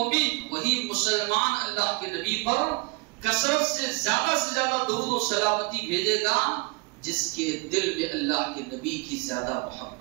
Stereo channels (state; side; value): quieter; left; 27.7 dB